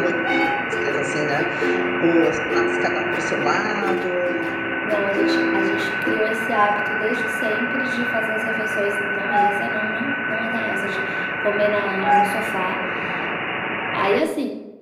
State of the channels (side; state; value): both; identical; correlation 1.00